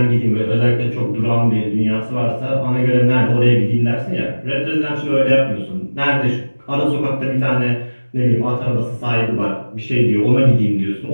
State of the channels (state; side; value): inverted; both; correlation -1.00